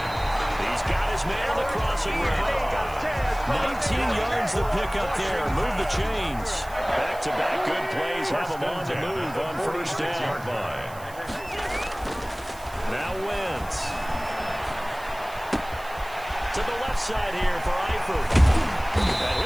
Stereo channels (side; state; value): right; noise; hiss, 20 dB below the sound